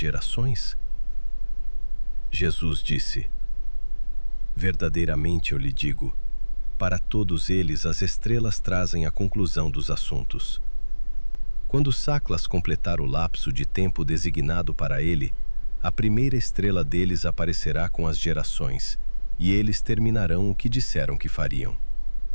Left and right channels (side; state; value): both; inverted; correlation -1.00